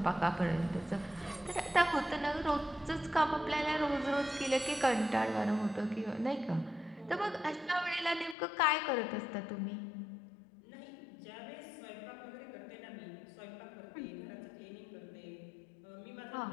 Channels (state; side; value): drops out; right; at 8.3 s